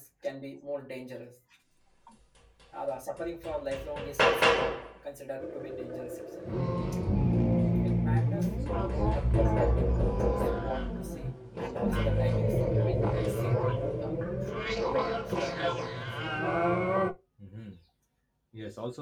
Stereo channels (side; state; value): both; identical; correlation 1.00